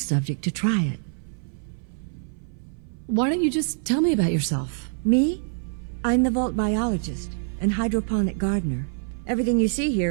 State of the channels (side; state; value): left; silent; 57 dB below the other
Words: subject to try it. Why don't you just tell me about yourself? Me? I'm the vault biologist and hydroponic gardener. Everything you see